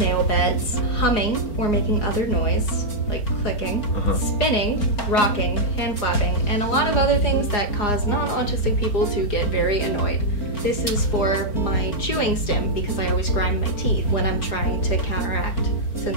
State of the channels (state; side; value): late; right; 4.4 ms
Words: beds, humming or making other noise, like clicking, spinning, rocking, hand flapping, and a lot of other things that cause non-autistic people to get very annoyed. This is for my chewing stim because I always grind my teeth when I'm trying to counteract